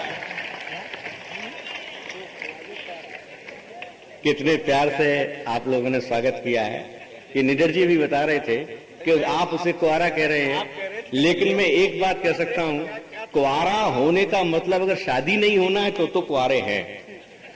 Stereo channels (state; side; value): identical; both; correlation 1.00